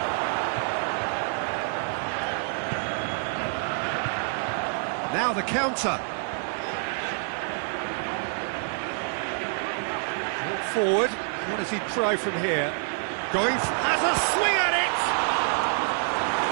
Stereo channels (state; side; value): silent; left; 57 dB below the other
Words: Now the counter. Forward, what does he try from here? Going, has a swing at it!